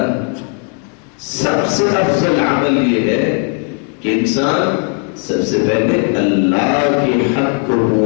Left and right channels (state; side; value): quieter; right; 38.4 dB